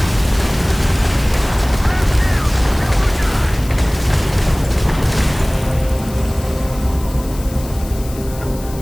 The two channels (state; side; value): noise; left; hiss, 17 dB below the sound